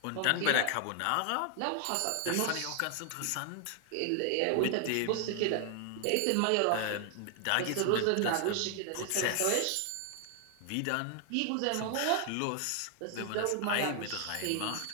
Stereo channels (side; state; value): both; different; correlation 0.00